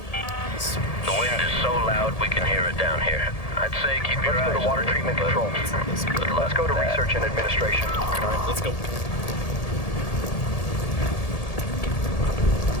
The wind is so loud we can hear it down here. I'd say keep your eyes. Let's go to water treatment control. Let's go to research and administration. Alright, let's go.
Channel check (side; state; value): right; late; 1.7 ms